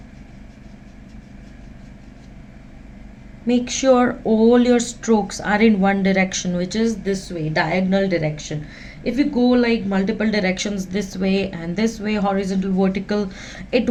Make sure all your strokes are in one direction, which is this way, diagonal direction. If you go like multiple directions, this way and this way, horizontal, vertical, it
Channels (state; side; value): identical; both; correlation 1.00